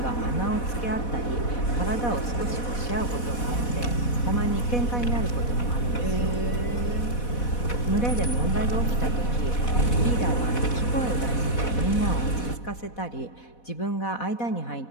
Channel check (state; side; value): late; right; 4.1 ms